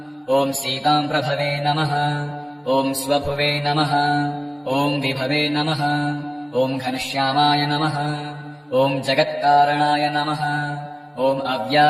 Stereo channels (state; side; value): identical; both; correlation 1.00